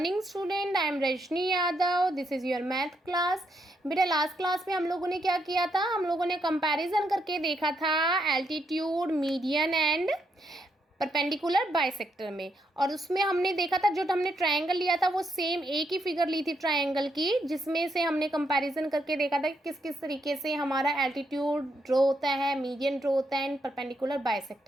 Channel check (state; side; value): normal; both; correlation 0.78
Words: student, I am Rajni Yadav. This is your math class. बेटा last class में हम लोगों ने क्या किया था, हम लोगों ने कंपैरिजन करके देखा था altitude, median and perpendicular bisector में। और उसमें हमने देखा था जो हमने ट्रायंगल लिया था वो सेम एक ही फिगर ली थी ट्रायंगल की, जिसमें से हमने कंपैरिजन करके देखा था कि किस किस तरीके से हमारा एल्टीट्यूड ड्रॉ होता है, मीडियन ड्रॉ होता है एंड परपेंडिकुलर